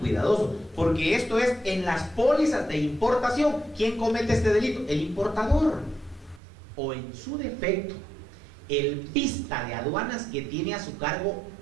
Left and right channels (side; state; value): left; drops out; at 6.4 s